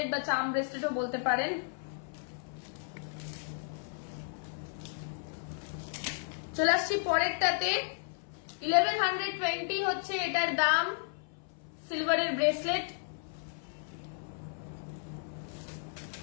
বা চাম ব্রেসলেটও বলতে পারেন। চলে আসছি পরেরটাতে, 1120 হচ্ছে এটার দাম, সিলভারের ব্রেসলেট।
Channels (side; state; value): right; silent; 55 dB below the other